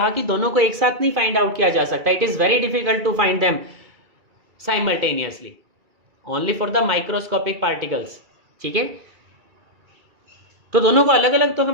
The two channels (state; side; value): late; left; 2.3 ms